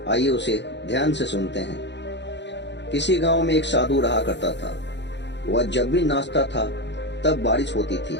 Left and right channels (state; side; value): late; right; 0.51 ms